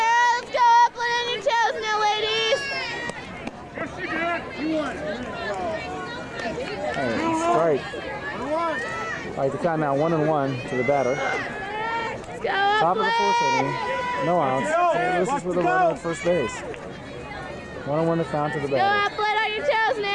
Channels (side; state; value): both; identical; correlation 1.00